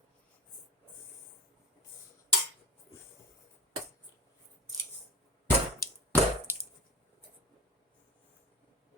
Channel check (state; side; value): normal; both; correlation 0.35